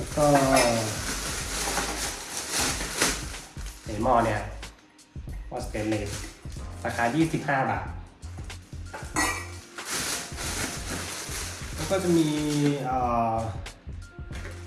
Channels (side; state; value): both; identical; correlation 1.00